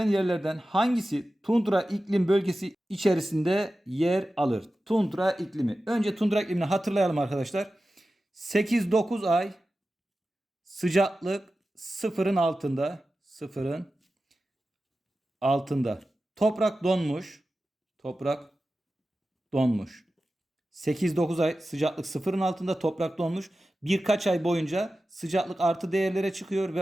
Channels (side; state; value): both; normal; correlation 0.94